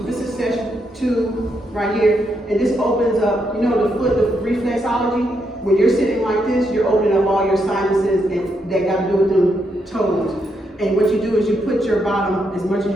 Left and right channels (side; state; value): both; normal; correlation 0.79